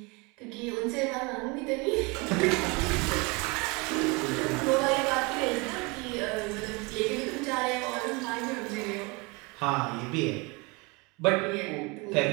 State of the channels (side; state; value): left; quieter; 27.7 dB